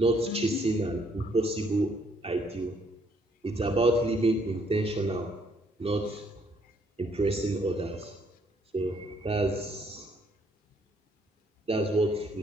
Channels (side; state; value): both; normal; correlation 0.68